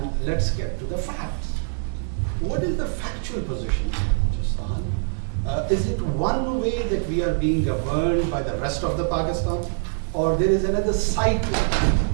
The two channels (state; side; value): silent; left; digital silence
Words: let's get to the facts. What is the factual position in Balochistan? Is it one way that we are being governed by the rest of the Pakistan, or there is another side to